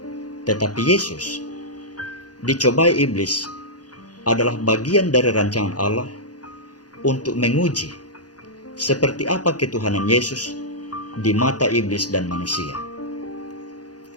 Tetapi Yesus dicobai iblis adalah bagian dari rancangan Allah untuk menguji seperti apa ketuhanan Yesus di mata iblis dan manusia.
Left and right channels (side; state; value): right; late; 0.68 ms